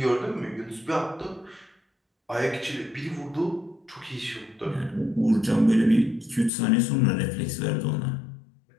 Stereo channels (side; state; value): right; drops out; at 6.5 s